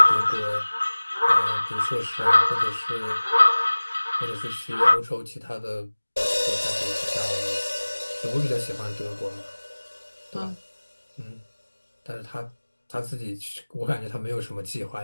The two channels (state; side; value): inverted; both; correlation -1.00